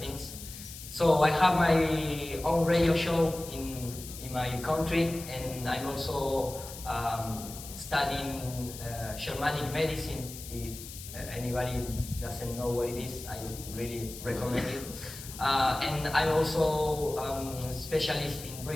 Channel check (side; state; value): left; noise; hiss, 12 dB below the sound